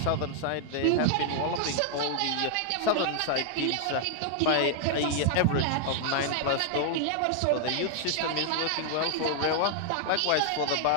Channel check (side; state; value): both; different; correlation 0.00